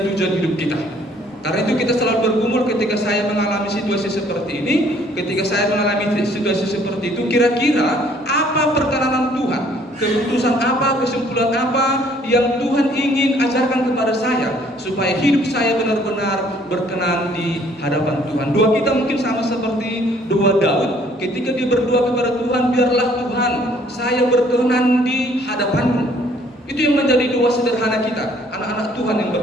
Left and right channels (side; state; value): both; normal; correlation 0.60